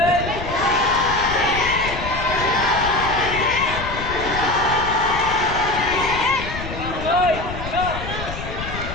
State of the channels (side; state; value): left; noise; rumble, 8 dB below the sound